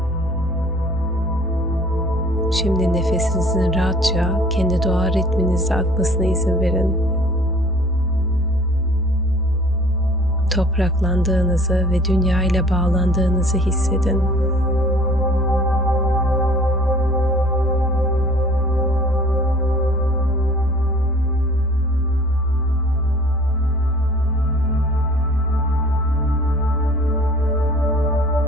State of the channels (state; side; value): normal; both; correlation 0.50